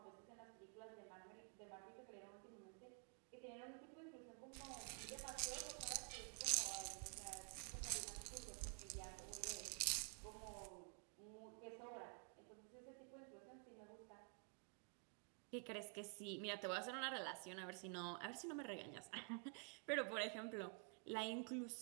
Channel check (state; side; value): quieter; left; 37.7 dB